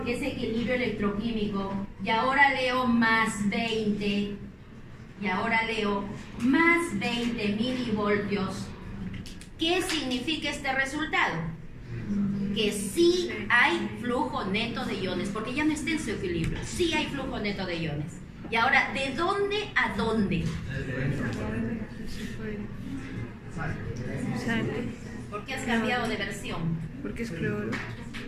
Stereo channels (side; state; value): both; identical; correlation 1.00